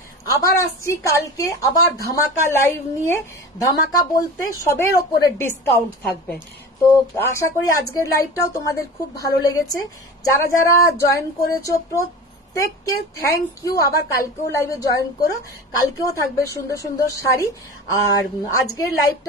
আবার আসছি কালকে আবার ধামাকা লাইভ নিয়ে। ধামাকা বলতে সবের ওপরে ডিসকাউন্ট থাকবে। তো আশা করি আজকের লাইভটাও তোমাদের খুব ভালো লেগেছে। যারা যারা জয়েন করেছো প্রত্যেককে থ্যাংক ইউ। আবার কালকেও লাইভে জয়েন করো, কালকেও থাকবে সুন্দর সুন্দর শাড়ি। আর আজকের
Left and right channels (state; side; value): normal; both; correlation 0.33